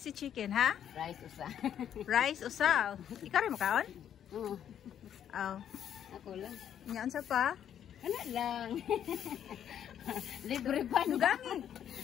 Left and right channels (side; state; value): right; quieter; 9.6 dB